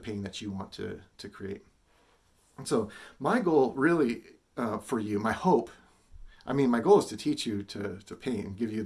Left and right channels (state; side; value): identical; both; correlation 1.00